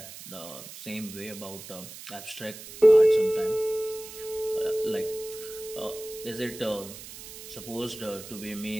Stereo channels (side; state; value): right; noise; hiss, 14 dB below the sound